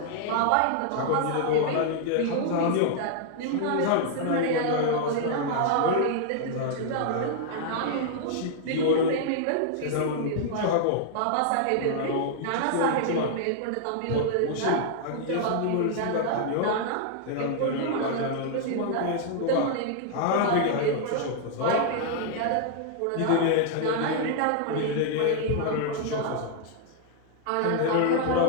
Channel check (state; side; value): different; both; correlation -0.01